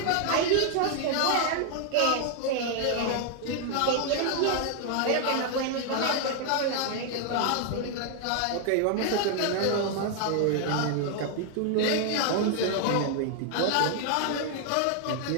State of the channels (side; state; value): both; different; correlation 0.00